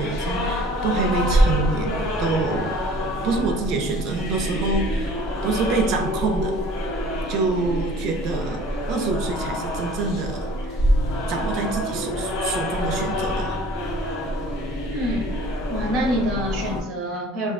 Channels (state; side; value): normal; both; correlation 0.51